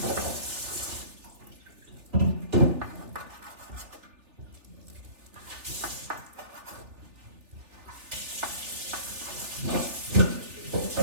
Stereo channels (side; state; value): left; late; 3.4 ms